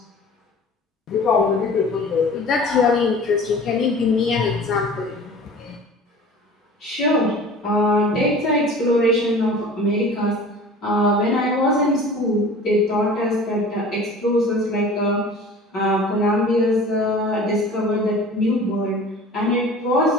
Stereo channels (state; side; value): normal; both; correlation 0.42